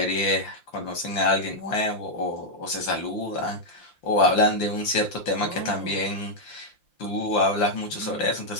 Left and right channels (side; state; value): right; late; 5.8 ms